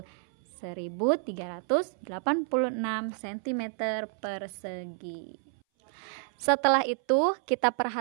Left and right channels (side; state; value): left; silent; 58 dB below the other